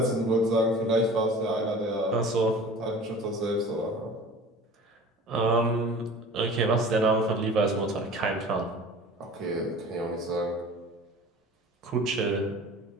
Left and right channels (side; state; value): both; normal; correlation 0.42